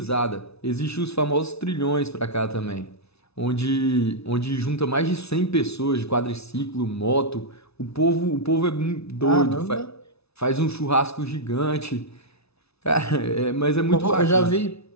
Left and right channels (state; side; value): late; right; 0.80 ms